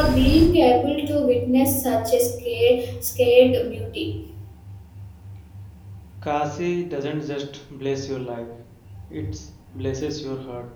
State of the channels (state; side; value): identical; both; correlation 1.00